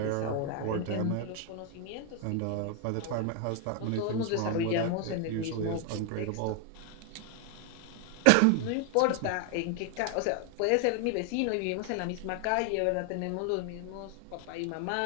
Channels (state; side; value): different; both; correlation 0.01